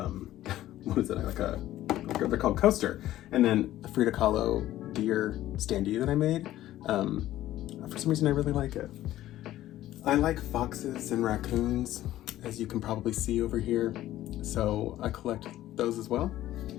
what is it? They're called Coaster. And then a Frida Kahlo deer standee that I made. For some reason I really like it. I like foxes and raccoons, as you can probably see over here. So I collect those as well.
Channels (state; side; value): quieter; right; 14.1 dB